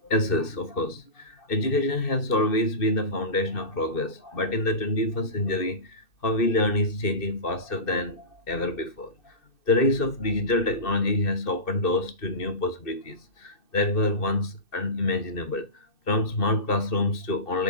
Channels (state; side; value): late; right; 2.6 ms